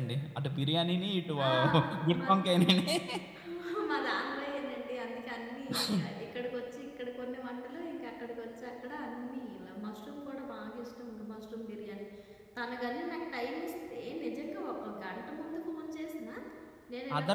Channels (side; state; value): both; identical; correlation 1.00